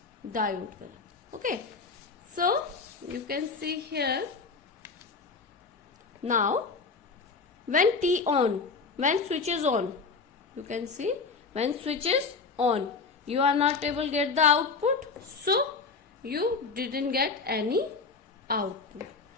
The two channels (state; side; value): quieter; right; 4.6 dB